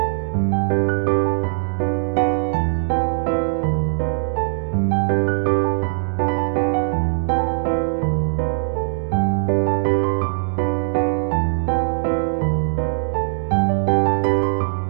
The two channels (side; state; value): left; silent; 61 dB below the other